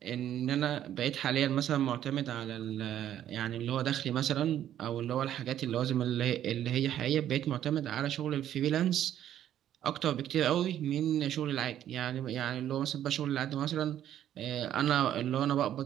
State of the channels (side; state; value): left; quieter; 11.1 dB